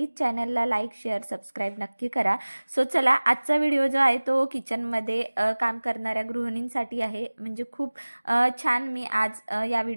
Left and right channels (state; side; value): inverted; both; correlation -1.00